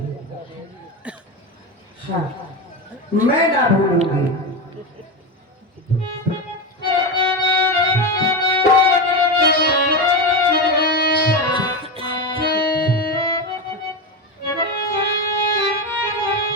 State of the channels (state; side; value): normal; both; correlation 0.17